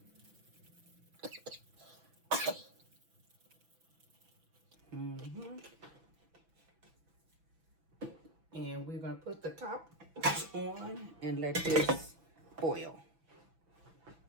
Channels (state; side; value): late; left; 6.0 ms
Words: And we're going to put the top on and let this boil.